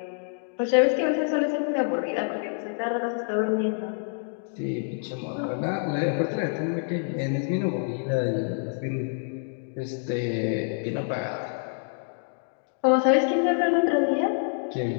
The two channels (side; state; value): right; silent; digital silence